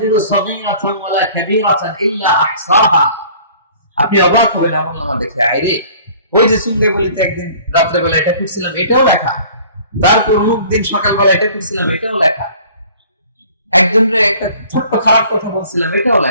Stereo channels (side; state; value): both; inverted; correlation -0.50